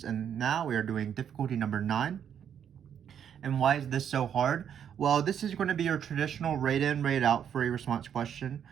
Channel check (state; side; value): quieter; left; 8.7 dB